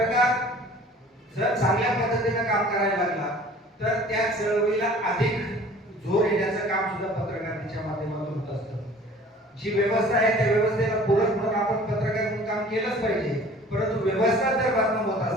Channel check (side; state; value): both; normal; correlation 0.48